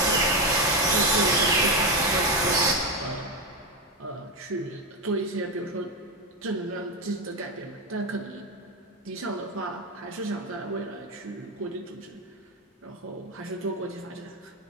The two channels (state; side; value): normal; both; correlation 0.10